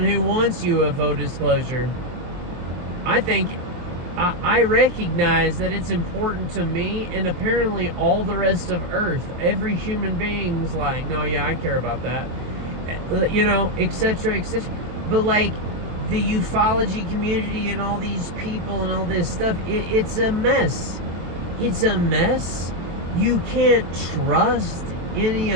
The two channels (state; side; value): late; left; 23 ms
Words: wants UFO disclosure. I recognize that it's important to me, and apparently all the rest of Earth, every human being's like, no, yeah, I care about that, etc., etc. But like, the ufology community and all these people and all this stuff, it's a mess. It's a mess. You can't trust any